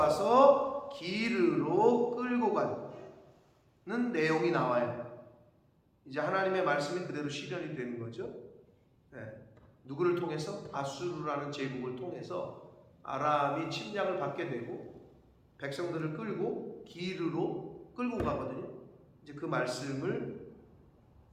기르로 끌고 가는 내용이 나와요. 이제 하나님의 말씀이 그대로 실현이 되는 거죠. 누구를 통해서? 아수르라는 제국을 통해서 아람이 침략을 받게 되고 백성들을 끌고 기르로 끌고 가거든요. 이제 이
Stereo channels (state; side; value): identical; both; correlation 1.00